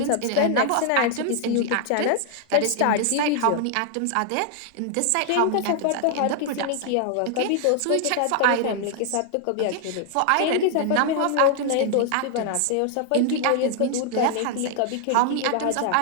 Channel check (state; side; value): different; both; correlation 0.00